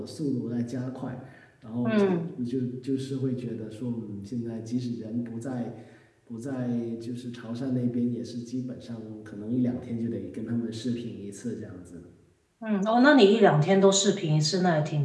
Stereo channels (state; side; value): identical; both; correlation 1.00